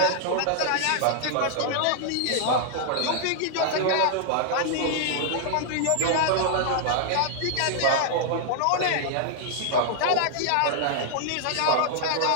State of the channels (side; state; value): both; different; correlation -0.01